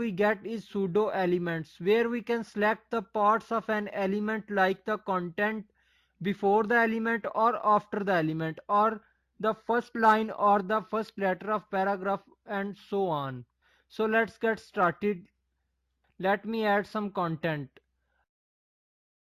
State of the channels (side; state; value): both; identical; correlation 1.00